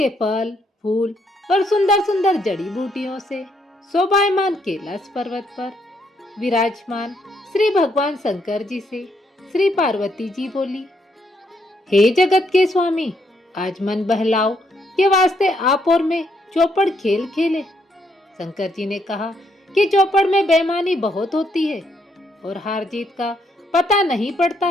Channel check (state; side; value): normal; both; correlation 0.74